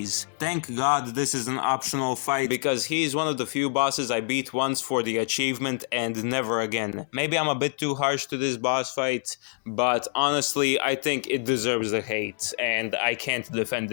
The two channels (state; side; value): silent; right; digital silence